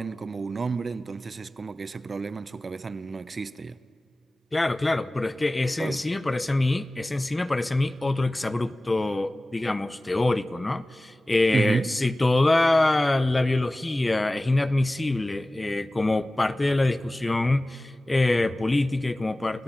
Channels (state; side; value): normal; both; correlation 0.97